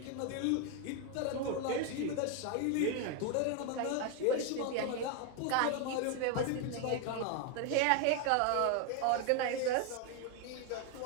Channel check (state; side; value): different; both; correlation 0.01